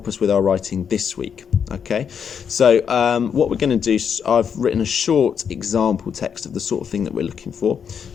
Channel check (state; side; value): quieter; right; 7.3 dB